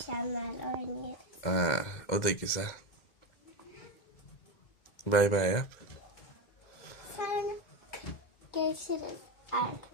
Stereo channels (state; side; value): late; right; 2.1 ms